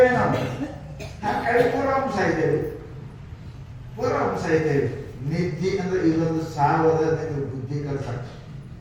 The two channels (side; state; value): both; identical; correlation 1.00